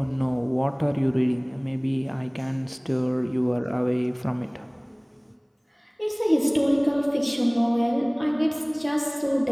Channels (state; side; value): identical; both; correlation 1.00